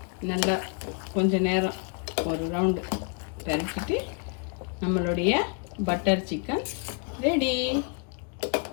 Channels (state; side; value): quieter; right; 38.2 dB